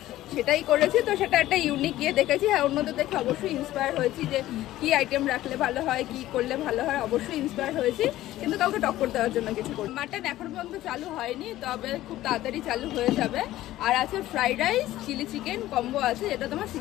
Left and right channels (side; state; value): right; quieter; 15.0 dB